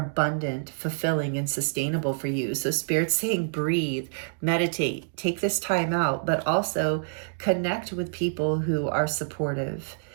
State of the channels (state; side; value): silent; left; digital silence